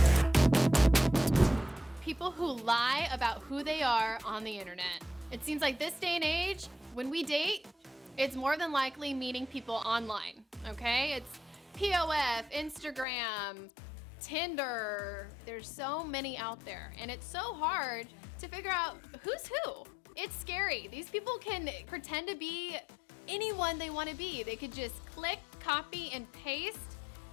People who lie about who they are on the internet. It seems like this day and age, when we date, it's more than likely meeting people online, okay? It's POF, Instagram, Tinder. There's so many out there, and it's so hard to figure out who's who. It's scary. These people can pretend to be anyone they want to be. They could just click, copy, and paste,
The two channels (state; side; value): drops out; right; at 13.1 s